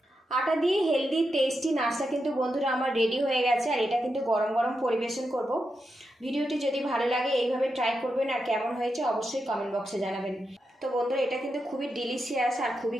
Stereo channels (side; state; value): both; normal; correlation 0.87